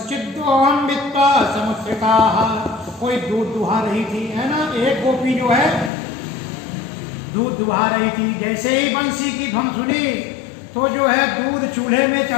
वित्ता समुद्रिका, कोई दूध दुहा रही थी, है ना। एक गोपी जो है दूध दुहा रही थी। जैसे ही बंसी की धुन सुनी तो जो है दूध चूल्हे में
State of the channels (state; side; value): drops out; right; at 5.9 s